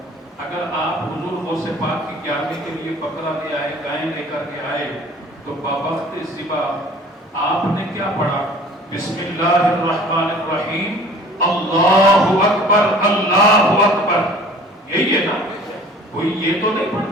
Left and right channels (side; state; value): both; normal; correlation 0.47